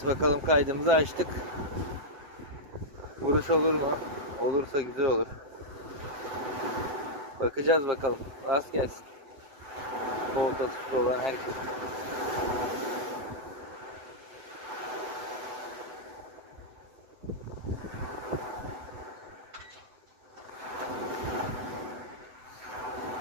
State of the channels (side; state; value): left; late; 7.9 ms